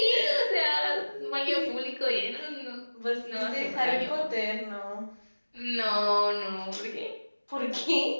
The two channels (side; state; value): both; inverted; correlation -1.00